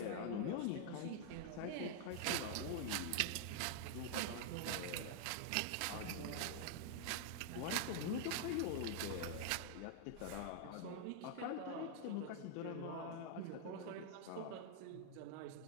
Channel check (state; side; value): different; both; correlation 0.00